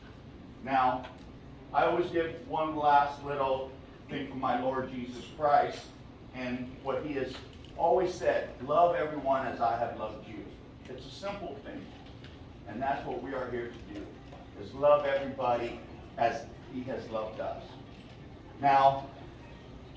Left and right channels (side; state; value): both; identical; correlation 1.00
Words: Now, I always give one last little thing from my Lord Jesus Christ, and what he has always said, love everyone as I have loved you. It's a simple thing, and that's what we are here to do, is love everybody as he has loved us. Now,